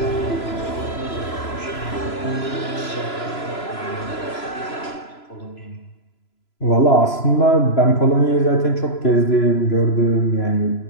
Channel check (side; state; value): right; late; 3.0 ms